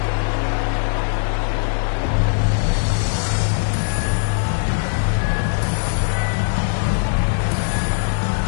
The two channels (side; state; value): right; silent; digital silence